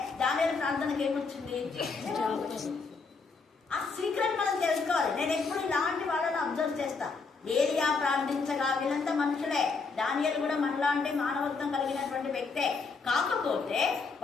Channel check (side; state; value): right; quieter; 4.6 dB